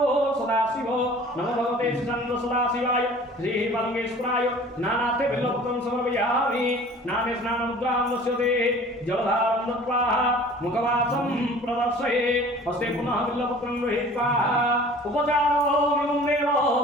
सदाशिवो नमो भगवते श्रीशङ्करसदाशिवाय श्रीबालकेश्वराय नानाथे बिल्लपत्रं समर्पयामि नाने स्नानमुद्रां दस्यते जलधारं दत्त्वा मुखवासं प्रदर्शयेत् हस्ते पुनः बिल्लपत्रं गृहीत्वा उपचारोऽहं देव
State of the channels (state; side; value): normal; both; correlation 0.46